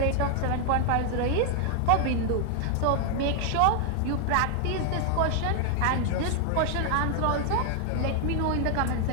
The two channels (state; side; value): different; both; correlation 0.00